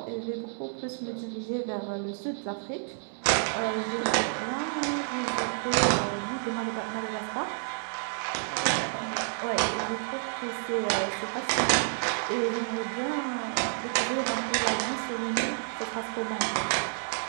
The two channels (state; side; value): silent; left; digital silence